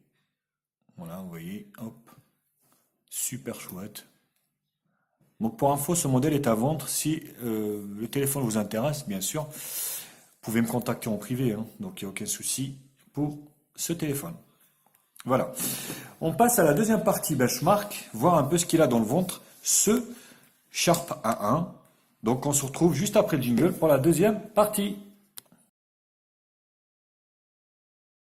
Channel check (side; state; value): both; identical; correlation 1.00